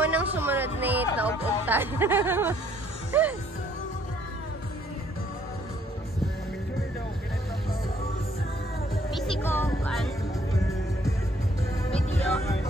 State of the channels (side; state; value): both; normal; correlation 0.64